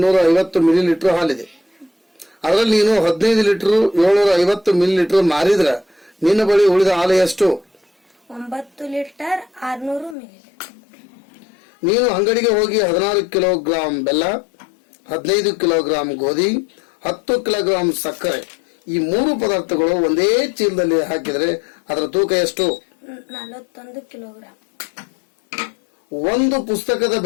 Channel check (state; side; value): drops out; right; at 10.2 s